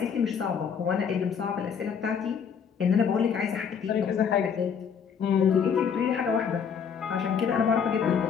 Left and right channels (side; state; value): right; quieter; 7.0 dB